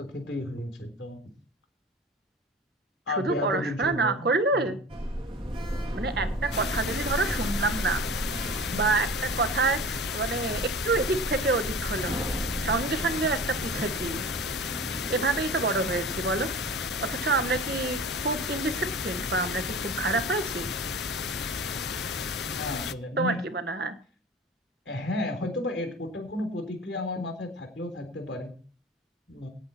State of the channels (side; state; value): both; normal; correlation 0.37